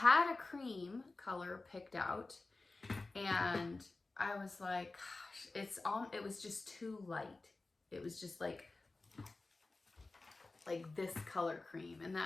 a cream color picked out, and I was like, gosh, it was just too light. It was just like this color cream, and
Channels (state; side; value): quieter; right; 3.4 dB